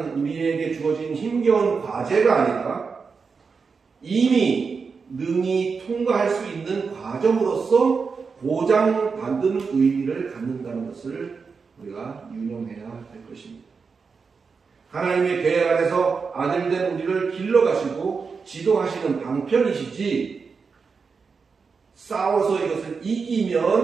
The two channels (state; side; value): quieter; left; 5.2 dB